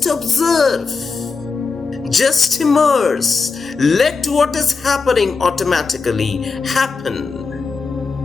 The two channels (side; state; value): right; quieter; 4.6 dB